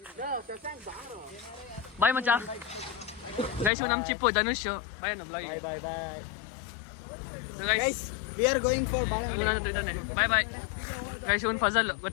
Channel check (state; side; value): drops out; right; at 3.7 s